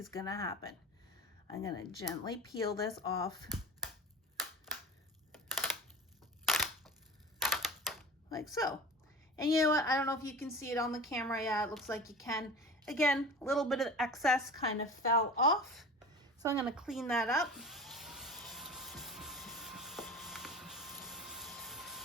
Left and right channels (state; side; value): normal; both; correlation 0.35